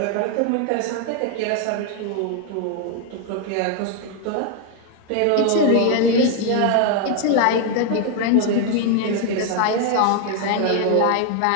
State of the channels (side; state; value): both; different; correlation 0.01